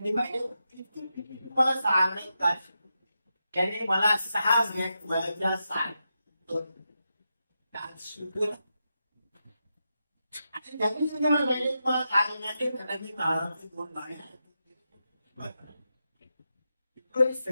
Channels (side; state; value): both; inverted; correlation -0.87